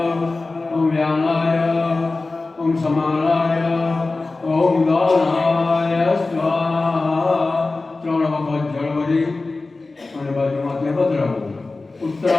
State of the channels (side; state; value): right; quieter; 3.5 dB